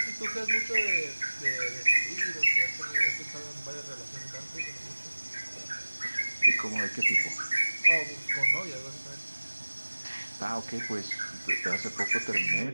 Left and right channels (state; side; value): inverted; both; correlation -1.00